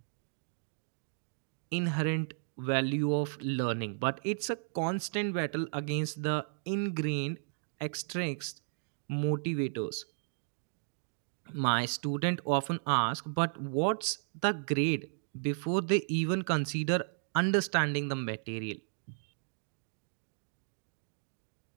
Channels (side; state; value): left; silent; digital silence